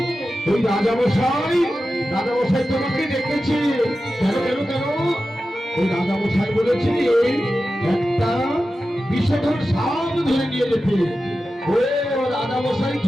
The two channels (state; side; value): normal; both; correlation 0.93